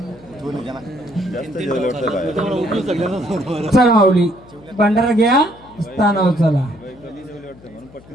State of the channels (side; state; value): left; noise; hum, 23 dB below the sound